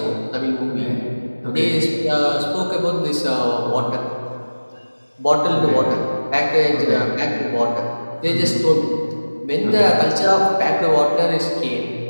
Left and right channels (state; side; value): inverted; both; correlation -1.00